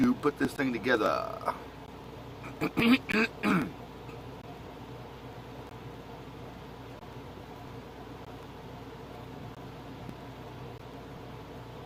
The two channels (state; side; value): identical; both; correlation 1.00